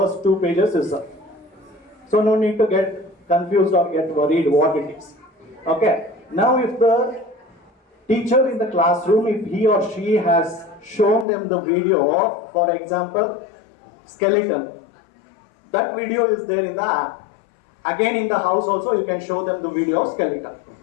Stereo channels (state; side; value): drops out; right; at 11.2 s